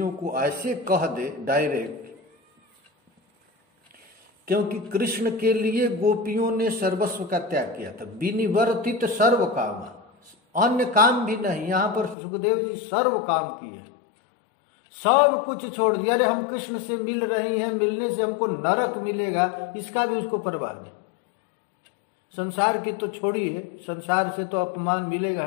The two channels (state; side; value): drops out; right; at 12.2 s